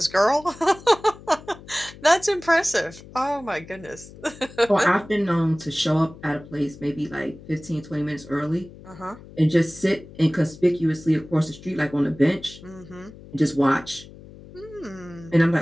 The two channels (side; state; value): left; noise; hum, 19 dB below the sound